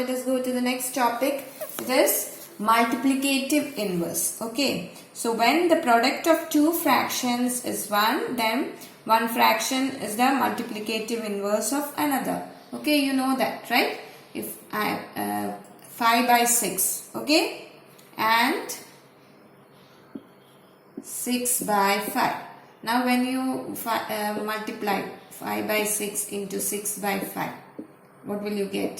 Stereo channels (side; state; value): both; identical; correlation 1.00